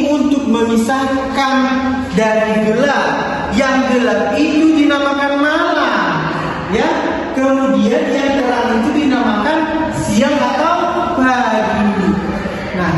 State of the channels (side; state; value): both; identical; correlation 1.00